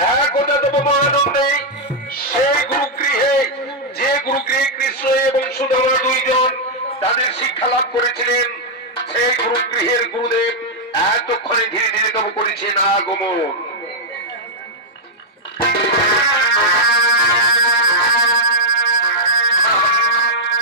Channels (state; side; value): normal; both; correlation -0.05